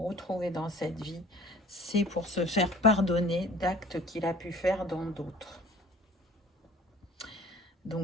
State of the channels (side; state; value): both; normal; correlation 0.48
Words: dans cette vie, c'est pour se faire pardonner d'actes qu'il a pu faire dans d'autres.